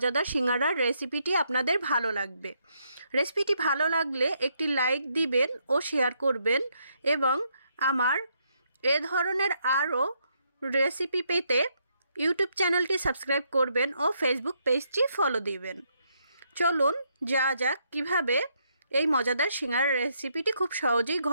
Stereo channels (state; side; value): inverted; both; correlation -0.75